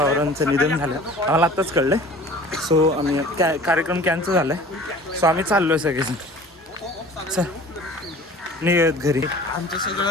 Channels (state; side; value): normal; both; correlation 0.45